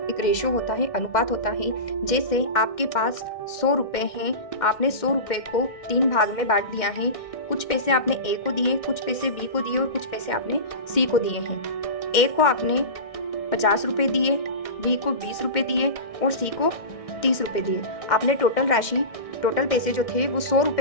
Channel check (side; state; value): right; late; 2.1 ms